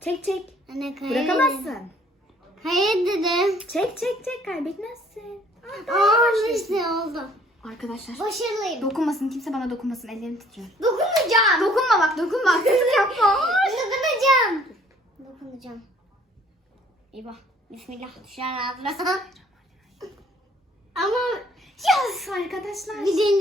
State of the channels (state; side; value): normal; both; correlation 0.58